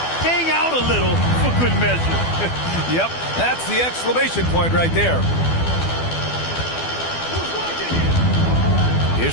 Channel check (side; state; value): right; late; 12 ms